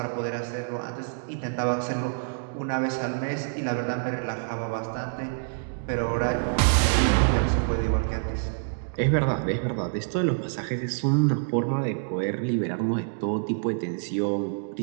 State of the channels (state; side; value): silent; left; digital silence